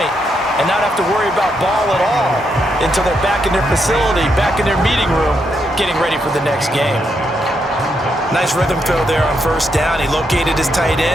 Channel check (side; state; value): both; normal; correlation 0.80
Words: and not have to worry about ball at all until they're back in their facility, back in their meeting room, getting ready for the next game. Nice rhythm throw there on first down. He located his tight